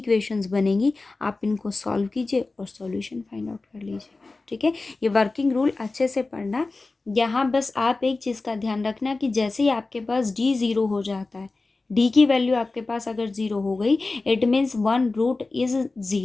बनेंगी, आप इनको सॉल्व कीजिए और सॉल्यूशन फाइंड आउट कर लीजिए। ठीक है, ये वर्किंग रूल अच्छे से पढ़ना। यहाँ बस आप एक चीज़ का ध्यान रखना कि जैसे ही आपके पास d 0 हो जाता है, d की वैल्यू आपके पास अगर 0 हो गई इट मीन्स 1 रूट इज़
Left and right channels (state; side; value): quieter; right; 3.5 dB